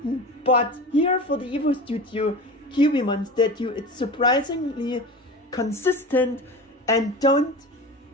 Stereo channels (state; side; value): normal; both; correlation 0.32